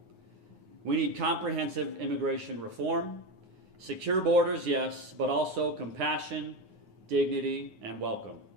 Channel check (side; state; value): left; late; 9.7 ms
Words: We need comprehensive immigration reform, secure borders, yes, but also compassion, dignity, and welcome.